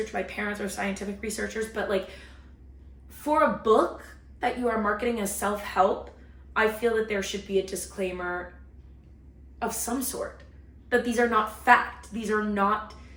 My parents are scientific researchers, but like for a book that you are marketing as self-help, I feel that there should be a disclaimer of some sort, that these are not fact. These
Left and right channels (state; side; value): identical; both; correlation 1.00